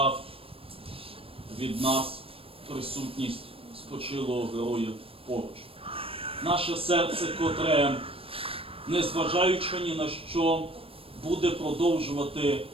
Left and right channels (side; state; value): left; late; 0.27 ms